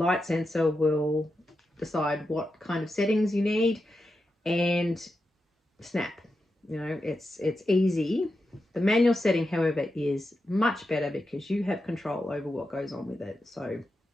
sensor will decide what kind of settings you need, and snap. It's easy. The manual setting, however, is much better because you have control over what goes on with it. So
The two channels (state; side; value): normal; both; correlation 0.88